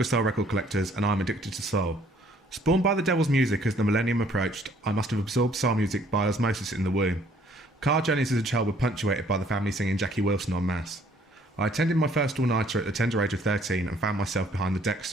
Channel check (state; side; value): normal; both; correlation 0.61